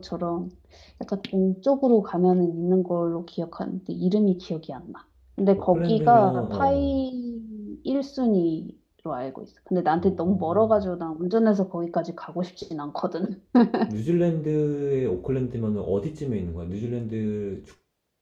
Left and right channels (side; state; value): both; identical; correlation 1.00